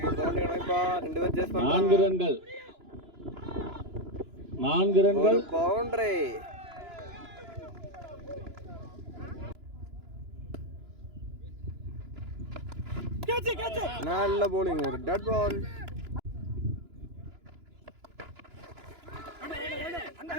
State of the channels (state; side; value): late; left; 2.9 ms